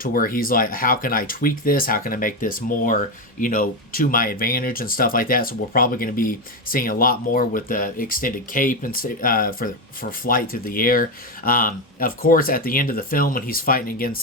where he's like, how can I tweak this? How can I make this more, to my advantage and stuff like that? So we're probably going to be seeing a lot more with the extended cape and for flight through the air. Of course, at the end of the film, when he's fighting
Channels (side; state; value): both; normal; correlation 0.11